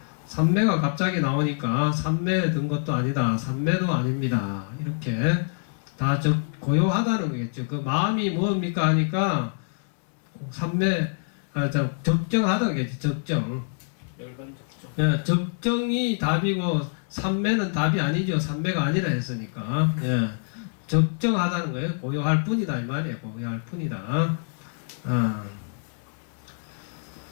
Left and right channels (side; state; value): right; silent; 61 dB below the other